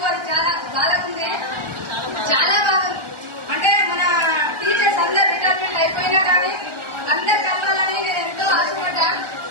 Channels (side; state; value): left; late; 1.4 ms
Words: అది చాలా బాగుంది. చాలా బాగుంది. అంటే మన టీచర్స్ అందరు రిటైర్మెంట్ అయిపోయినా కానీ అందరు కలవాలని నేను ఎంతో ఆశపడ్డా.